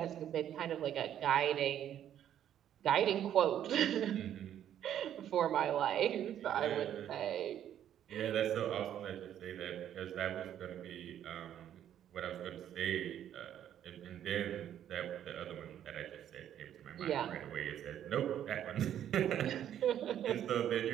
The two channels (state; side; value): quieter; left; 10.5 dB